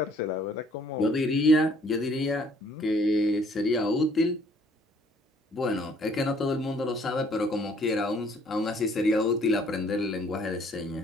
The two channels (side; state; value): both; normal; correlation 0.61